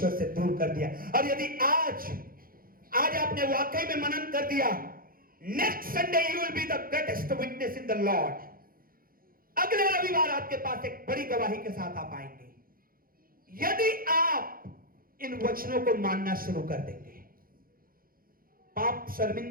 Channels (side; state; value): left; late; 0.42 ms